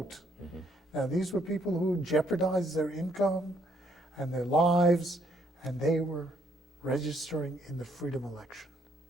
Mm-hmm. Now, these were people who jeopardized their income and their lives, and they were registering in the freedom election.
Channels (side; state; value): both; normal; correlation 0.70